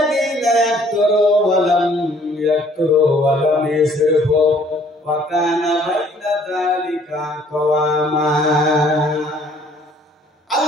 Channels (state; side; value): normal; both; correlation 0.59